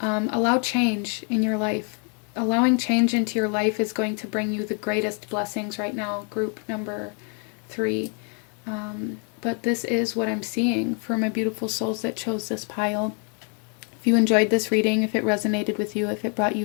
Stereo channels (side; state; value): right; quieter; 39.6 dB